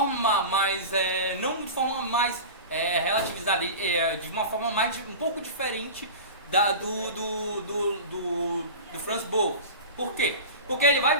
mais, não de forma mais relativizada, de uma forma mais um pouco diferente do Franz Boas. Por quê? Porque ele vai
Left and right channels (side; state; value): both; inverted; correlation -0.32